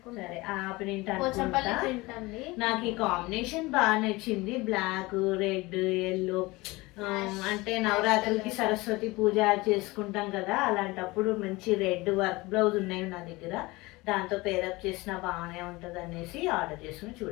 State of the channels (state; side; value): quieter; right; 22.2 dB